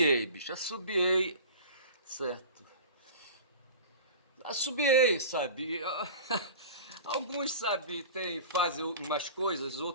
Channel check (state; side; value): inverted; both; correlation -0.37